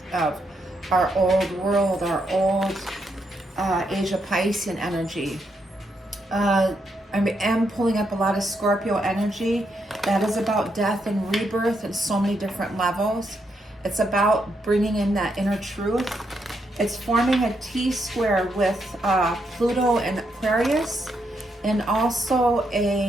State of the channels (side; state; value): both; normal; correlation 0.79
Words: of our old world, our old Asia Piscean energy. I am pulling up a lot of Scorpio energy that is about death and rebirth in so many different levels. It's about bringing in that inner truth. It's forming a T-square with Pluto and Aquarius, and also